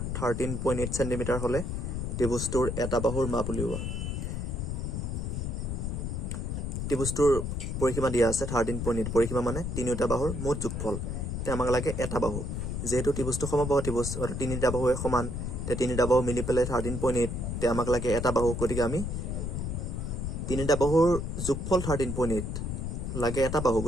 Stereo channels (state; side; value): noise; left; rumble, 3 dB below the sound